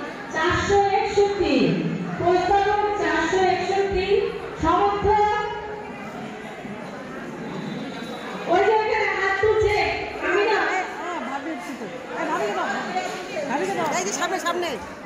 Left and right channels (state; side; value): identical; both; correlation 1.00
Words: প্রস্তাবক 461 সমর্থক ওই যে এখানে হাত তুলছে। আমি না এই যে সামনে সামনে